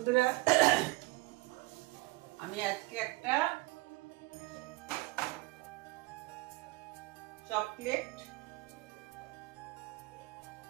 আমি আজকে একটা চকলেট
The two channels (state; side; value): quieter; left; 22.7 dB